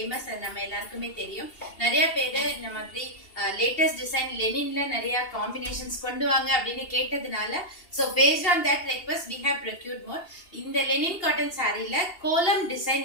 அது நம்ம எல்லாருக்குமே தெரியும். நிறைய பேர் இந்த மாதிரி லேட்டஸ்ட் டிசைன் லெனின்ல நிறைய காம்பினேஷன்ஸ் கொண்டு வாங்க அப்படின்னு கேட்டதுனால so based on that request we have procured more. இந்த லெனின் காட்டன் சாரியில கோலம்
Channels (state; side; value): late; right; 2.8 ms